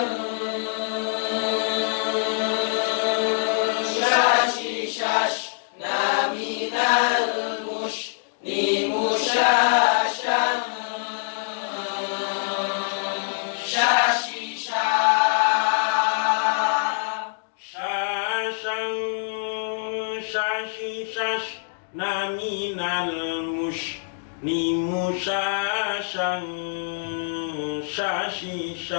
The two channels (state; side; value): silent; right; digital silence